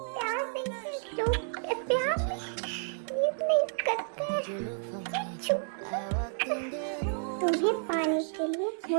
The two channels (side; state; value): left; silent; 57 dB below the other